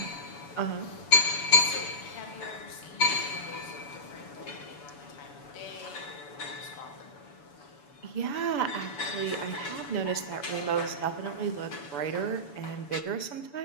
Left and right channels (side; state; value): right; late; 7.0 ms